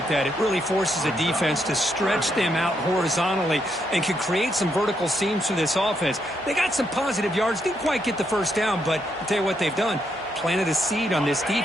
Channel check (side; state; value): both; normal; correlation 0.78